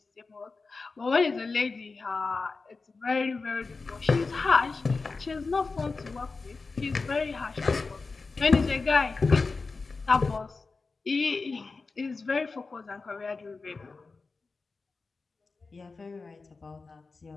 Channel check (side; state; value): right; quieter; 4.1 dB